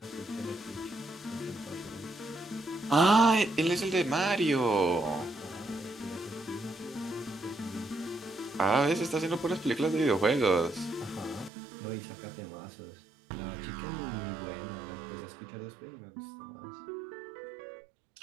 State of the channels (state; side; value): drops out; left; at 11.5 s